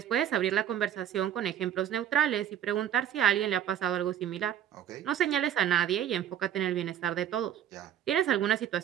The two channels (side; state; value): left; quieter; 10.2 dB